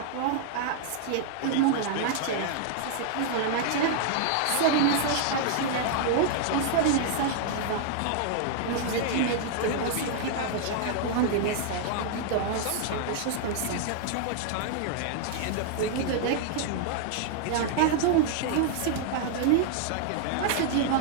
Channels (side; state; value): both; different; correlation -0.01